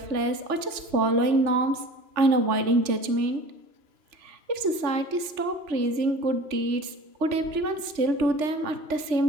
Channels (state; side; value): late; left; 3.4 ms